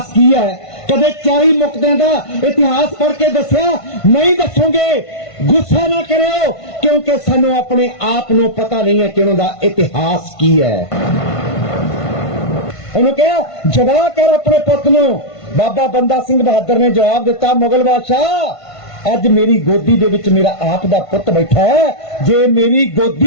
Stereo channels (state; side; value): late; right; 1.5 ms